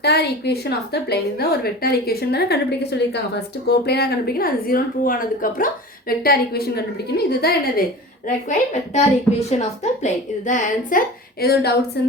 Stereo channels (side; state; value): both; normal; correlation 0.35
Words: equation of the plane. இதுதான் ஒரு வெக்டார் ஈக்குவேஷன் தானே கண்டுபிடிக்க சொல்லியிருக்காங்க. ஃபர்ஸ்ட் கோப்ளேனாக கண்டுபிடிக்கணும், அது 0 ப்ரூவ் ஆனதுக்கப்புறம் வெக்டார் ஈக்குவேஷன் கண்டுபிடிக்கணும். இதுதான் என்னது required vector equation of the plane. இதுதான் ஆன்சர். ஏதோ டவுட்ஸ்